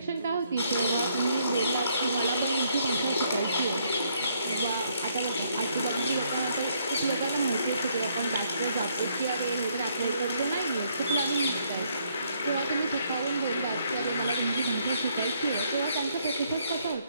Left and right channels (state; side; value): inverted; both; correlation -0.70